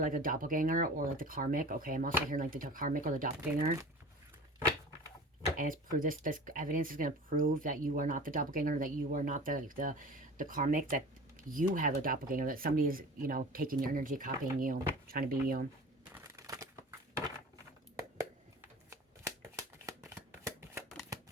a doppelganger or like the karmic, okay? I'm also hearing like the karmic or the doppelganger. And it's proved this evidence is going to prove that you are not the doppelganger, that you are not the karmic, that you have a doppelganger, that somebody is, you know, taking your energy, copying you, trying to be you.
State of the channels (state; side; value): normal; both; correlation 0.38